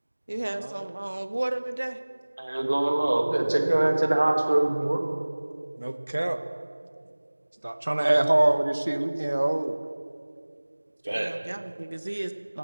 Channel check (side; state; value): both; inverted; correlation -1.00